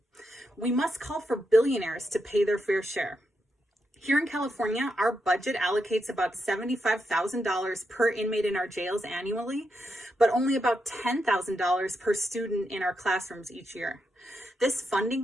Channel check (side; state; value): both; normal; correlation 0.83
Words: We must call for billionaires to pay their fair share. Here in California, our budget allocates about $75,000 per inmate in our jails annually, but only about $10,000 per student in our classrooms each year. This funding